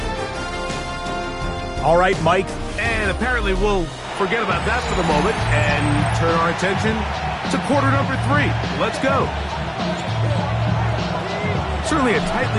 All right, Mike. And apparently we'll forget about that for the moment and turn our attention to quarter number 3. Let's go. Certainly a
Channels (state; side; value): identical; both; correlation 1.00